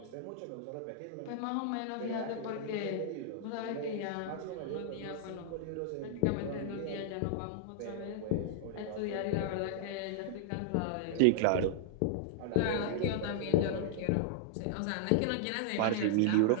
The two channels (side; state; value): both; different; correlation -0.01